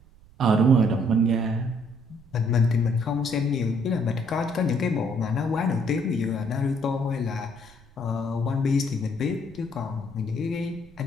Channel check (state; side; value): noise; right; rumble, 25 dB below the sound